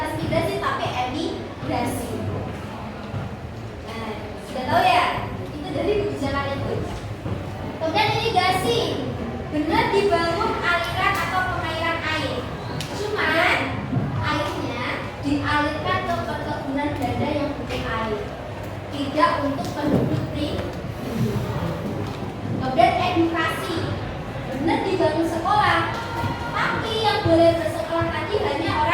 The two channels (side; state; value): both; identical; correlation 1.00